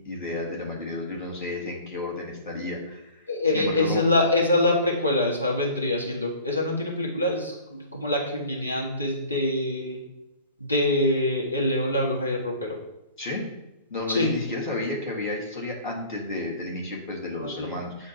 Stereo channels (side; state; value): both; inverted; correlation -0.46